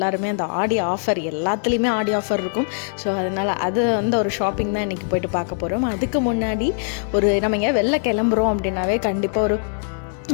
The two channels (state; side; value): silent; right; 64 dB below the other